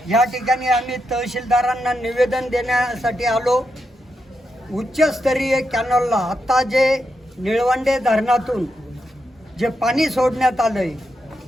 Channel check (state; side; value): normal; both; correlation 0.84